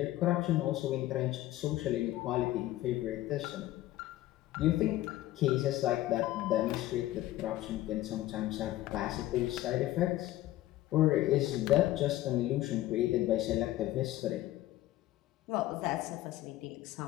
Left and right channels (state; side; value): quieter; right; 15.5 dB